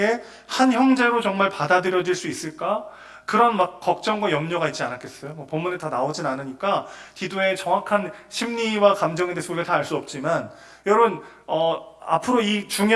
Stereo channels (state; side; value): identical; both; correlation 1.00